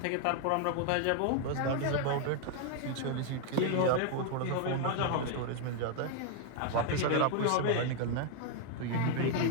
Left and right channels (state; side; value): different; both; correlation 0.00